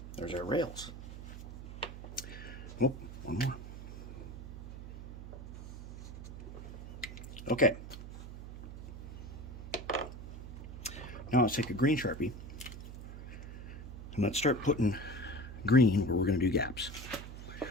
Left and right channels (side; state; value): right; noise; hum, 10 dB below the sound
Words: There's our rails. Oh, one more. Okay. Now let's take a green Sharpie and let's start putting green where we're going to do gaps.